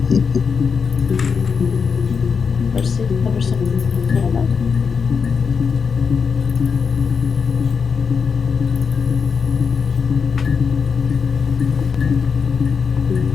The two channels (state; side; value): quieter; right; 5.8 dB